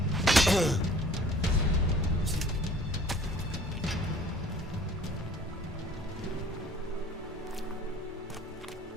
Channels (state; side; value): normal; both; correlation 0.51